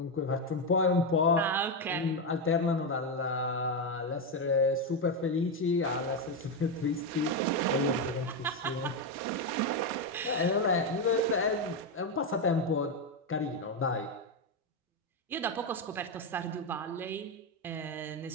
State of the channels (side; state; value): both; normal; correlation 0.08